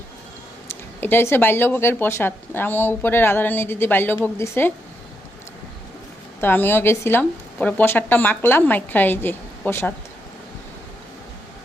এটা হচ্ছে বাল্যভোগের প্রসাদ। আমার উপরে রাধারানী দিদি বাল্যভোগ দিছে, তো আমিও গেছিলাম, পরে প্রসাদটা মাখলাম, মাইখা এই যে প্রসাদ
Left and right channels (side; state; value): both; normal; correlation 0.81